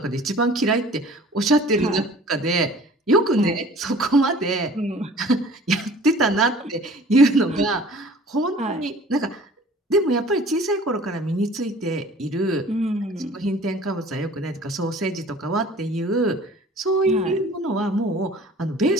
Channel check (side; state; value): both; normal; correlation 0.48